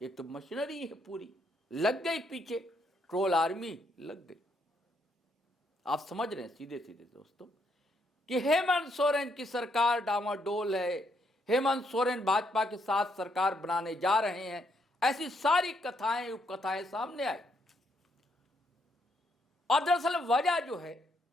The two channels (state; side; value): normal; both; correlation 0.74